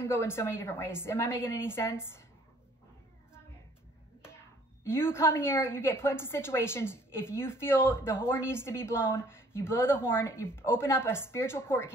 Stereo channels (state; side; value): normal; both; correlation 0.58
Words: go in so many different ways. Am I making any sense? You come here, you get put into situations. If you feel the horn needs to be blown, you blow the horn, you open up a spiritual court